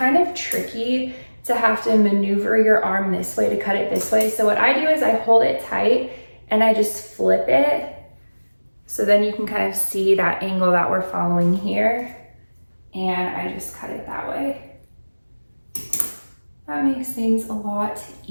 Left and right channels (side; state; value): both; inverted; correlation -1.00